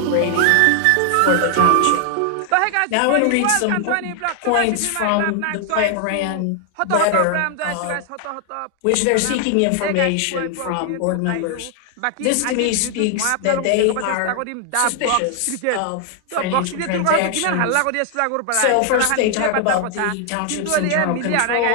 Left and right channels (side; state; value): both; different; correlation 0.00